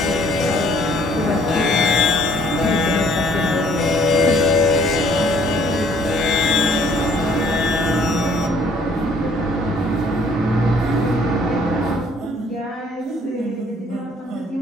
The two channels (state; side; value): normal; both; correlation 0.60